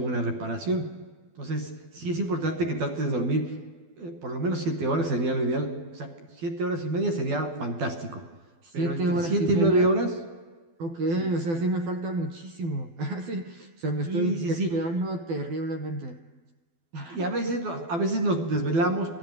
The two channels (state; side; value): late; left; 12 ms